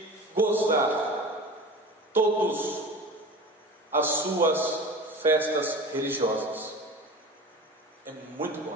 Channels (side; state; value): both; normal; correlation 0.35